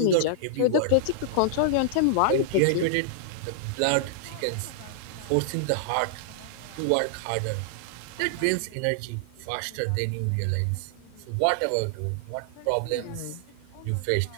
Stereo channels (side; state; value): both; different; correlation -0.01